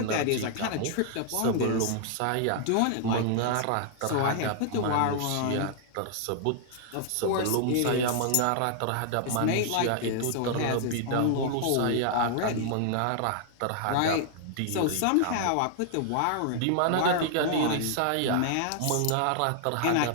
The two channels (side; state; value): both; different; correlation 0.00